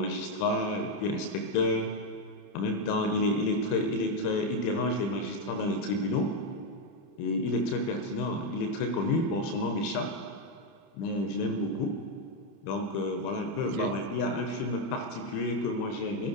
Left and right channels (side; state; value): right; late; 30 ms